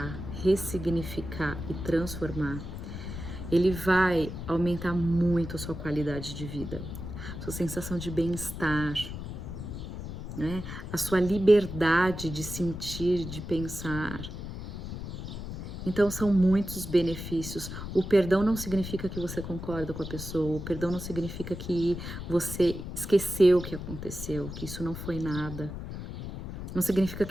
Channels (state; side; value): noise; left; rumble, 8 dB below the sound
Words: ressignificar e transformar, ele vai aumentar muito a sua qualidade de vida, sua sensação de bem-estar, né? A sua liberdade de sentir, de pensar. Então são muitos benefícios. O perdão não significa que você concorda com a pessoa, o perdão não significa que você esqueceu o que aconteceu, que isso não foi nada. Não significa